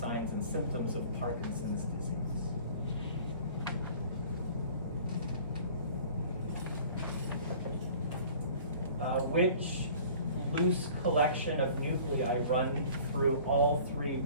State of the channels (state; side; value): inverted; both; correlation -0.47